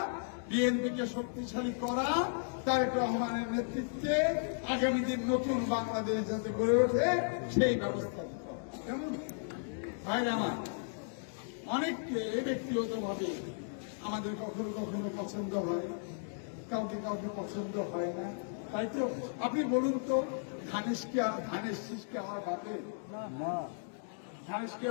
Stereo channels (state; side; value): silent; right; digital silence